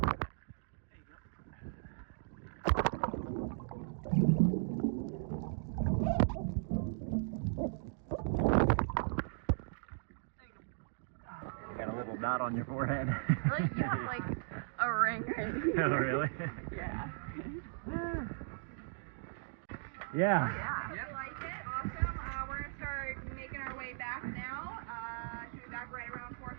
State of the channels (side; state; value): left; silent; digital silence